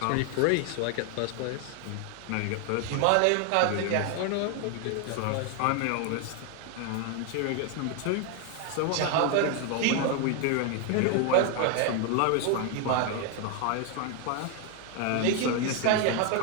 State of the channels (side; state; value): both; different; correlation 0.01